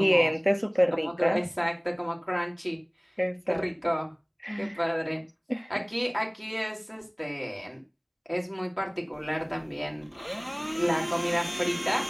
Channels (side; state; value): both; identical; correlation 1.00